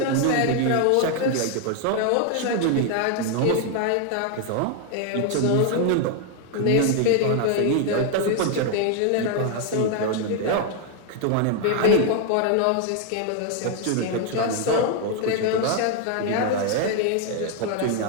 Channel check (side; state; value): both; different; correlation 0.01